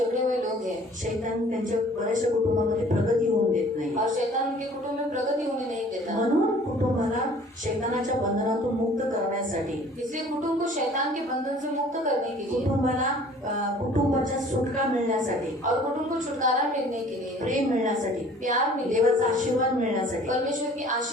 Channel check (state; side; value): normal; both; correlation 0.51